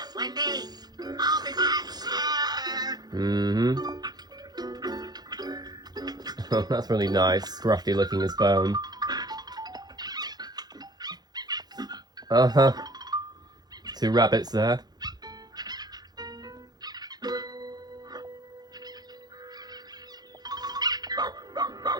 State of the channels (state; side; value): late; left; 0.19 ms